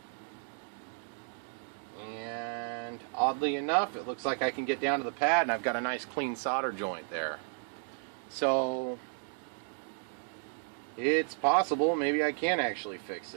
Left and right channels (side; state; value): left; silent; 56 dB below the other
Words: And oddly enough, it looks like I can get down to the pad and I've got a nice clean solder joint there. So it's possible maybe I can actually fix